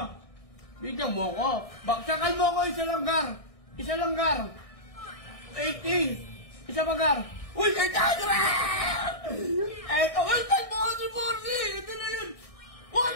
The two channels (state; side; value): late; right; 1.6 ms